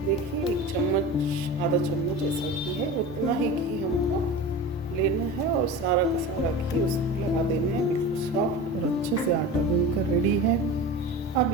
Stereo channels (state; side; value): normal; both; correlation 0.31